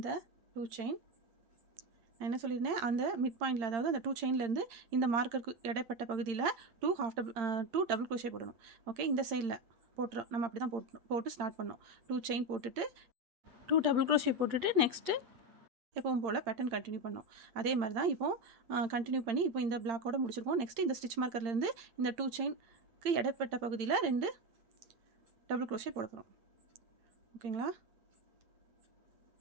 2 செயின் நான் என்ன சொல்லியிருந்தேன், அந்த மிட் பாயிண்டில், அதாவது அந்த 2 செயின்லேருந்து இந்த மார்க்கருக்கு இடைப்பட்ட பகுதியில் 2 டபுள் க்ரோஷே போடணும். ஓகே, இந்த சைடில் போட்டுரும், நம்ம அப்படி தான் போட்டு ஸ்டார்ட் பண்ணோம். 2 செயின் போட்டுட்டு 2 டபுள் க்ரோஷே போட்டுட்டு நெக்ஸ்ட்டு எப்பவும் போல் பேட்டர்ன் கண்டினியூ பண்ணோம். அதே மாதிரி தான் இப்போது கண்டினியூ பண்ணி இப்போ இந்த பிளாக்கோட முடிச்சிருக்கோம். நெக்ஸ்ட்டு இந்த ஸ்டிச் மார்க்கர்லேருந்து இந்த 2 செயினுக்கு இடைப்பட்ட பகுதியில் 2 டபுள் க்ரோஷே போட போகிறோம். ஓகேங்களா?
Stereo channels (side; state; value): left; late; 8.8 ms